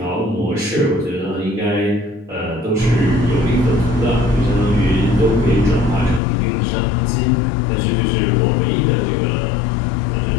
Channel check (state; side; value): drops out; right; at 6.2 s